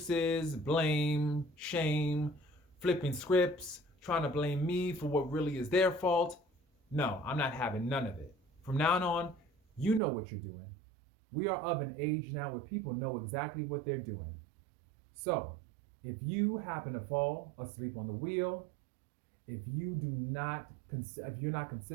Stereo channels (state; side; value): drops out; left; at 10.0 s